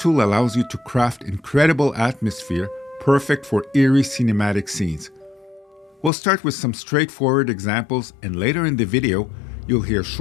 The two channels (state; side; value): drops out; right; at 6.1 s